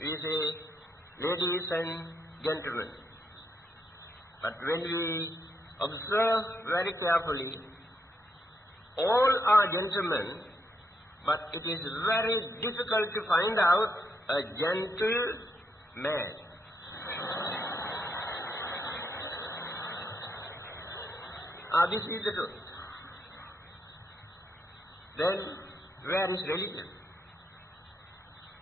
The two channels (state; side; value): normal; both; correlation 0.78